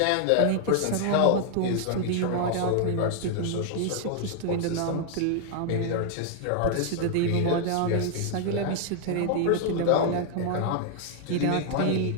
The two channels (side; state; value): both; different; correlation 0.00